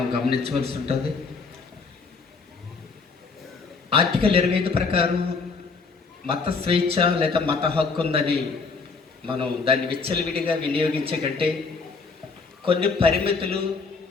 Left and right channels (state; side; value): quieter; right; 4.6 dB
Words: గమనించవలసి ఉంటుంది. ఆర్టికల్ 25 ప్రకారం మత స్వేచ్ఛ లేదా మత హక్కు ఉందని మనం దాన్ని విచ్చలవిడిగా వినియోగించే కంటే కొన్ని పరిమితులు,